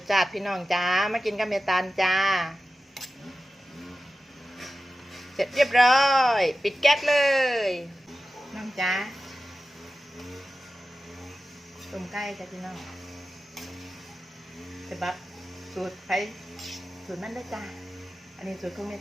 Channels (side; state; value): both; normal; correlation 0.94